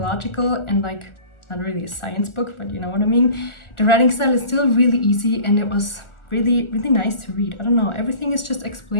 and like not really a science book, but you know what I mean, the writing style is still really easy, and it was really, really nice to read. I don't know, everything is just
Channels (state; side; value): late; right; 1.4 ms